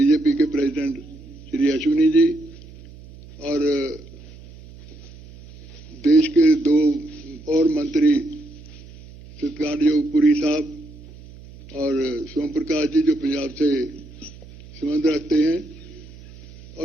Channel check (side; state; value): right; noise; hum, 19 dB below the sound